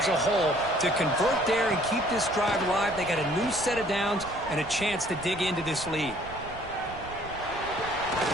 a hole to convert there and keep this drive alive, they got a new set of downs and a chance to dig into this lead.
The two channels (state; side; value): noise; right; rumble, 15 dB below the sound